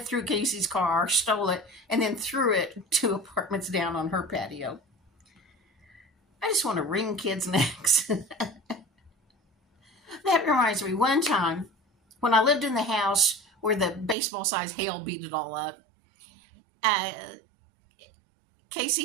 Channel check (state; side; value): drops out; left; at 14.2 s